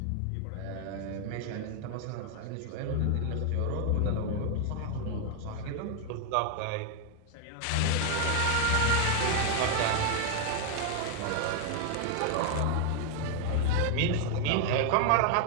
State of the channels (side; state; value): both; different; correlation 0.00